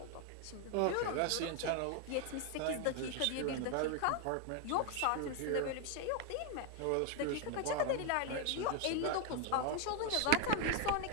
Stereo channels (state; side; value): different; both; correlation 0.01